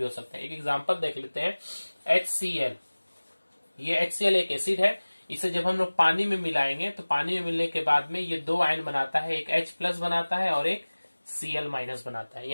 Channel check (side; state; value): both; inverted; correlation -1.00